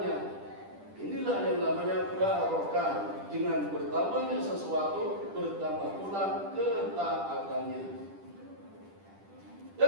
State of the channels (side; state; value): left; late; 10 ms